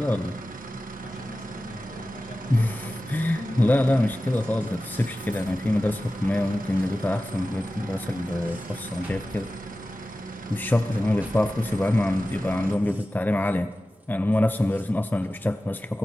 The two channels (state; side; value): normal; both; correlation 0.94